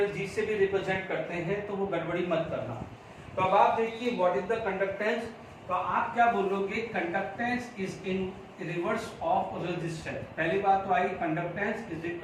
जी से भी रिप्रेजेंट करते हैं, तो वो गड़बड़ी मत करना। तो अब आप देखिए व्हाट इज द कंडक्टेंस, तो आप क्या बोलोगे? Conductance is in reverse of resistance. पहली बात तो I conductance is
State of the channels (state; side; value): identical; both; correlation 1.00